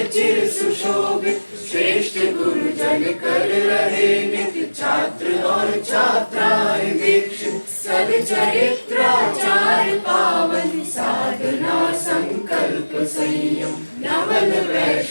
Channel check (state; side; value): inverted; both; correlation -1.00